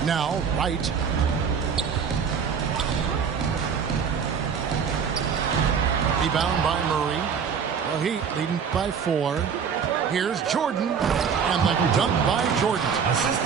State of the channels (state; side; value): quieter; left; 6.7 dB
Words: Now, Wright. Rebound by Murray. The Heat leading by 4. Here's Jordan. And the dunk by Jordan. Assist